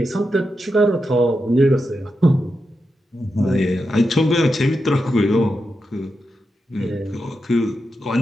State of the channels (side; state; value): both; normal; correlation 0.88